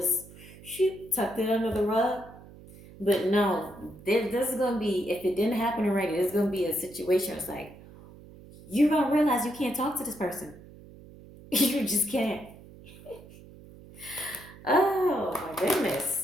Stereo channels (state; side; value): noise; right; hum, 20 dB below the sound